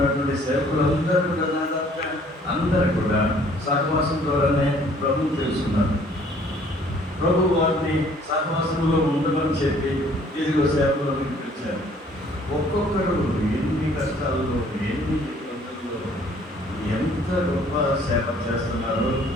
సేవకులందరూ కూడా దాకా అందరూ కూడా సహవాసం ద్వారానే ప్రభు తెలుసుకున్నారు. ప్రభు వారిని సహవాసంలో ఉండమని చెప్పి ఇదిగో సేవలో పిలిపించారు. ఒక్కొక్కరు ఎన్ని కష్టాల్లో, ఎన్ని ఇబ్బందుల్లో ఎంత గొప్ప సేవ చేస్తున్నారో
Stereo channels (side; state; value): both; normal; correlation 0.58